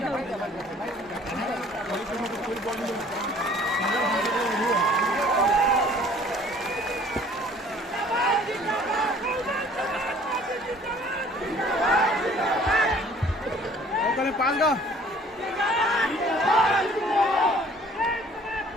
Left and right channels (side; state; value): both; normal; correlation 0.53